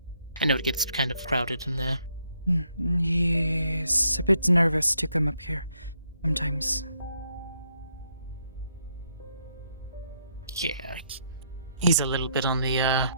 I know it gets kind of crowded in there. He's a bit nervous to come up here sometimes. Yeah, he's a little bit on the, I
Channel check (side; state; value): both; inverted; correlation -0.74